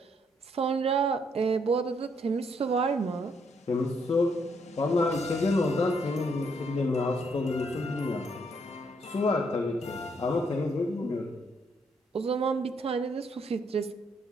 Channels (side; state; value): both; normal; correlation 0.72